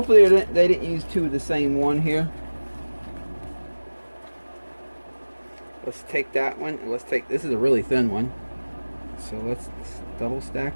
they didn't use 2 of the same one here. Let's take that one, and let's take, this is a really thin one, so let's double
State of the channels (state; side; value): inverted; both; correlation -1.00